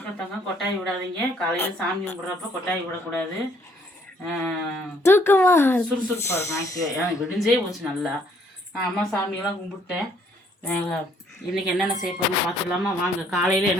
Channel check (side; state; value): both; normal; correlation 0.65